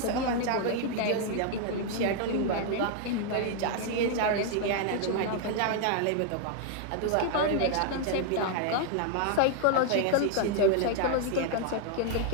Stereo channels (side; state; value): both; different; correlation 0.00